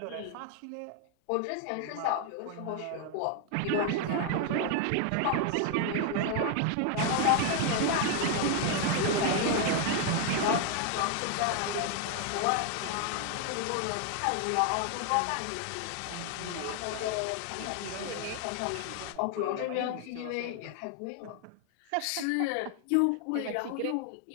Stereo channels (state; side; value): different; both; correlation 0.00